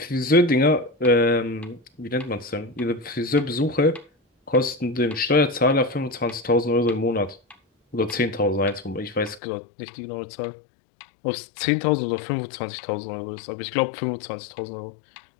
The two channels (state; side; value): drops out; right; at 9.4 s